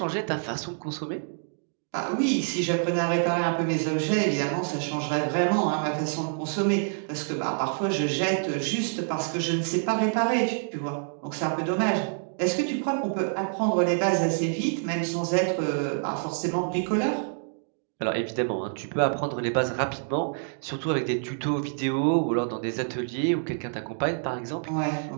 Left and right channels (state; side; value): silent; left; digital silence